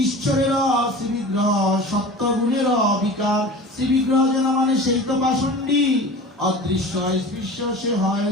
ঈশ্বরের শ্রীবিগ্রহ সত্যগুণের অবিকার। শ্রীবিগ্রহ যেন মানে সেই তো পাষণ্ডী, অদৃশ্য স্পৃশ্য সে হয়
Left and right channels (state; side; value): normal; both; correlation 0.37